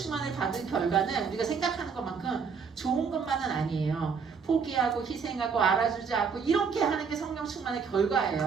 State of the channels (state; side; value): quieter; left; 5.9 dB